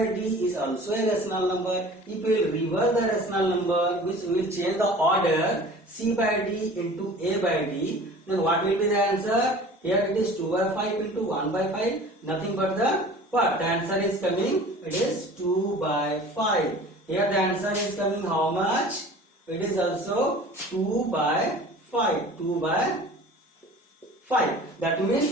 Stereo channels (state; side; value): normal; both; correlation 0.43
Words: d is also a rational number. If we will reverse the rational number, which we will change the order c by d into a by d, then what will be the answer? Here it is 2 by 5 into 1 by 5, nothing but the what? The answer is coming, it is 2 by 5. Here the answer is coming how much? It is also 2 by 5, 2 by 5. That